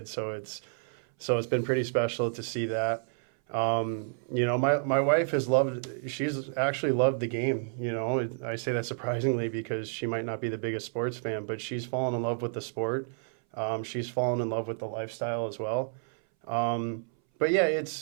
So it's been pretty special to see that. My wife she's actually loved the game. I say that surprisingly because she might not be the biggest sports fan, but she's fallen in love with the sport. She's fallen in love with the lifestyle as well. But yeah,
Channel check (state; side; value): silent; left; 58 dB below the other